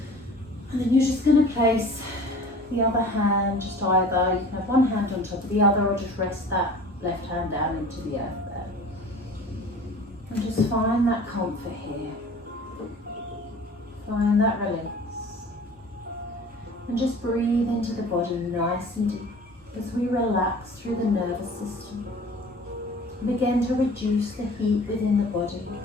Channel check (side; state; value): both; normal; correlation 0.43